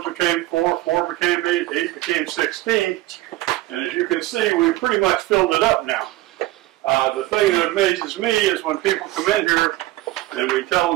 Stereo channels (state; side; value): quieter; left; 17.4 dB